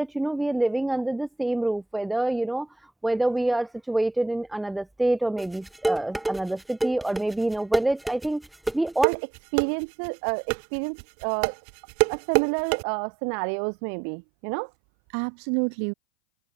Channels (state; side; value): drops out; left; at 9.1 s